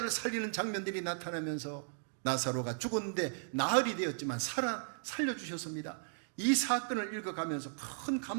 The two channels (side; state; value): left; silent; digital silence